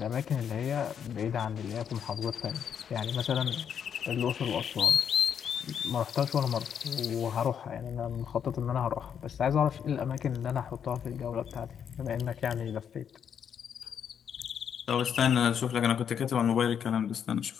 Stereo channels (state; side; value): quieter; right; 8.1 dB